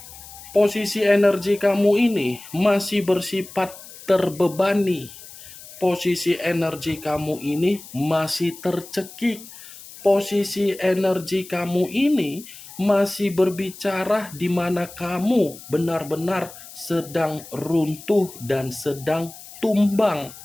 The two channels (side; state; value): left; noise; hiss, 17 dB below the sound